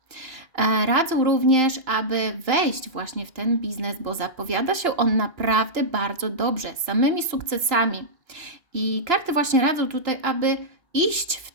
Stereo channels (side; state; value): left; late; 2.9 ms